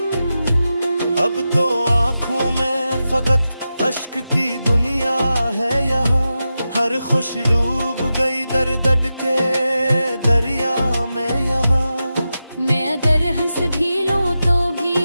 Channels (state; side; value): inverted; both; correlation -0.91